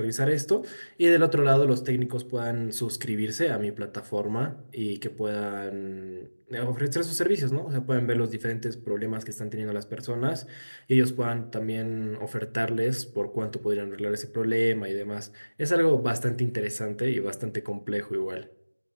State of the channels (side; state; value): both; inverted; correlation -1.00